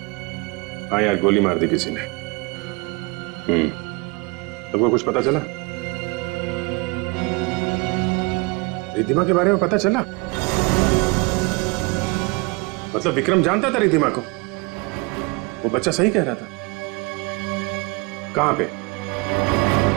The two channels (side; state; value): left; quieter; 27.5 dB